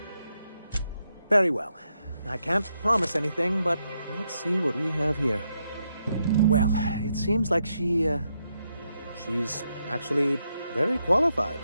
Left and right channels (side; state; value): both; inverted; correlation -0.81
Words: Very well. I can't promise anything, but let's see what we have here. Well, it seems like she's actually very qualified.